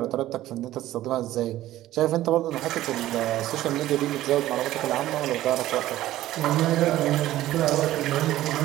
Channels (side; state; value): left; quieter; 14.7 dB